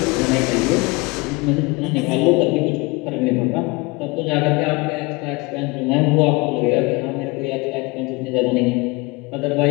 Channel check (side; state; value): right; quieter; 25.5 dB